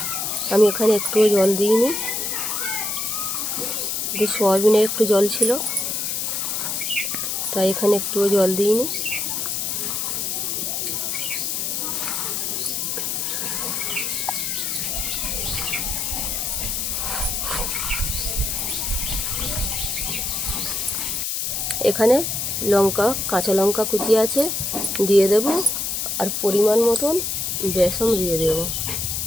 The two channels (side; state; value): left; noise; hiss, 1 dB below the sound